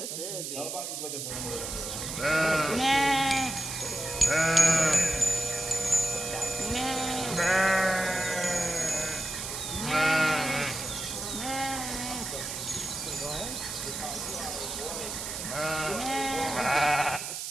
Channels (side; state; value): right; noise; hiss, 5 dB below the sound